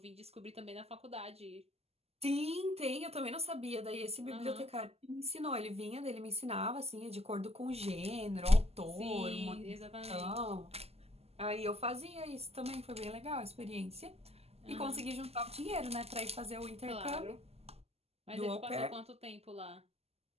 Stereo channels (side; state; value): left; late; 0.29 ms